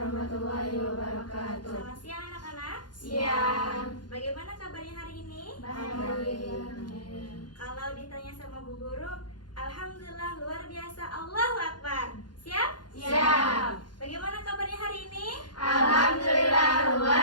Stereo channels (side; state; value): right; late; 0.71 ms